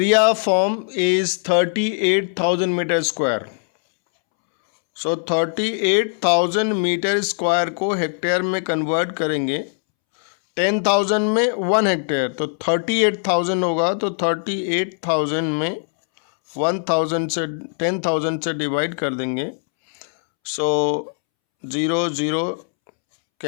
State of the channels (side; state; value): right; silent; 65 dB below the other